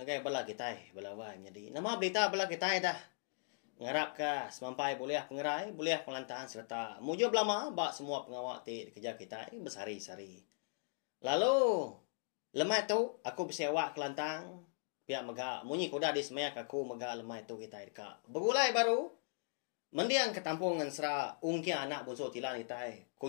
bala kita balawai jadi. Nama berita bala kita dah. Ngarap ka semampai boleh pengerai, boleh pelantahan serta mujub lama ba semua pengawak ti kerja kita bersari-sari. Lalu lemai tu aku bersewa kelantang. Pihak maga munyi kuda di semeyak aku maga lemai tu kita dekat. Begulai baru mendiang ketampung Ensera ungkia anak bonso tilan itai.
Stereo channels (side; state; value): right; silent; digital silence